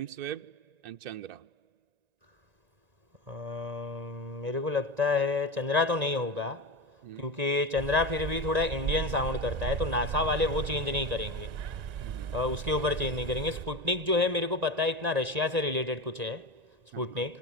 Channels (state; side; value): late; left; 1.9 ms